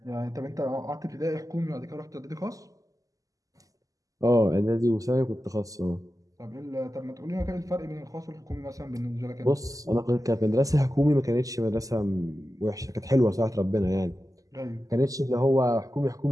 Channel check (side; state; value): left; late; 0.17 ms